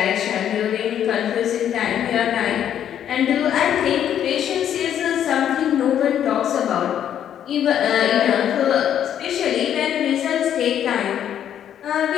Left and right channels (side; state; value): right; quieter; 9.9 dB